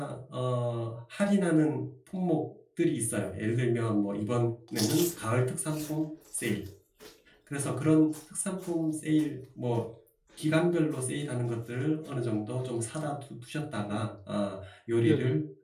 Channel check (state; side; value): identical; both; correlation 1.00